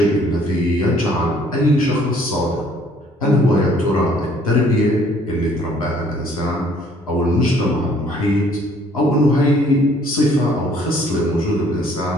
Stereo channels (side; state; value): both; normal; correlation 0.60